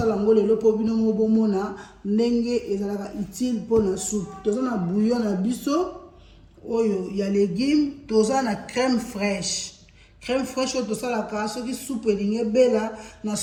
yango lelo po bino mo bomona ndenge ezalaka utile pona soupe toza na bouillon na biso oyo ya légumes toza na crème fraîche oyo tosalaka soki soupe elingi bela na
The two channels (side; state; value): both; identical; correlation 1.00